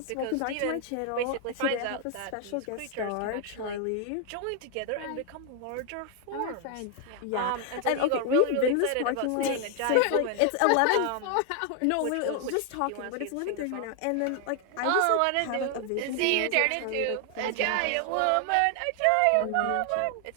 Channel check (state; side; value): different; both; correlation 0.00